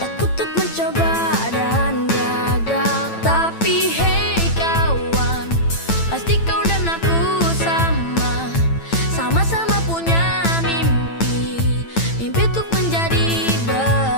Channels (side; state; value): right; late; 9.0 ms